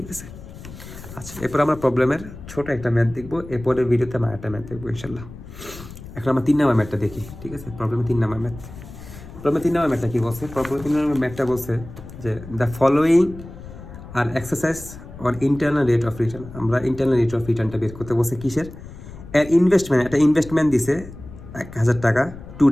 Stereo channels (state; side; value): noise; left; rumble, 15 dB below the sound